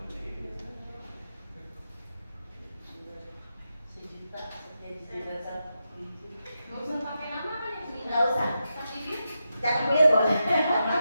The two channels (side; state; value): both; inverted; correlation -0.87